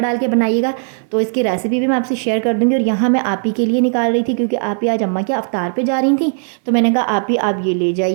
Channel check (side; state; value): left; silent; 60 dB below the other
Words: डाल के बनाइएगा। तो इसकी रेसिपी भी मैं आपसे शेयर कर दूँगी। और यहाँ मैं आप ही के लिए निकाल रही थी, क्योंकि आप ही आज अम्मा के अफ्तार पे जा रही थी। तो मैंने कहा आप ये ले